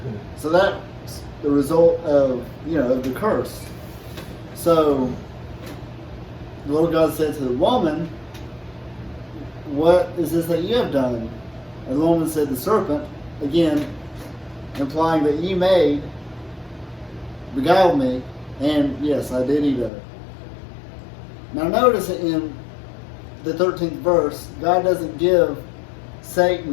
So that's the result of of the curse. So the Lord God said to the woman, "What is this that you have done?" And the woman said, "The serpent," again implying that you beguiled me, and yes, I did eat of it. Now notice in the 13th verse, God doesn't give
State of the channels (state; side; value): drops out; right; at 19.9 s